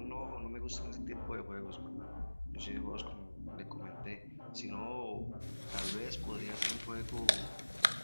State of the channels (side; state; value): both; inverted; correlation -1.00